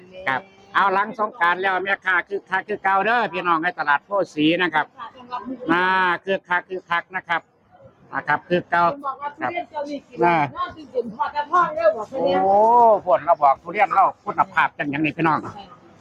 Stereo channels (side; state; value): both; identical; correlation 1.00